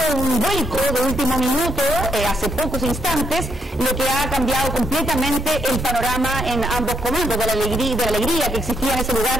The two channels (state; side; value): normal; both; correlation 0.87